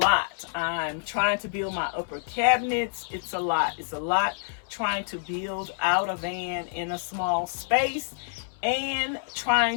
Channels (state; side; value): silent; right; 60 dB below the other